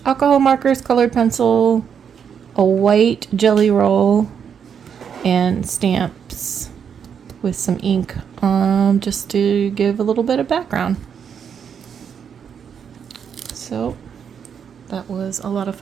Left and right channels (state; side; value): quieter; left; 7.5 dB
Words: alcohol markers, colored pencil, a white jelly roll, and stamps with some ink just to give a little bit of background. So that was a lot of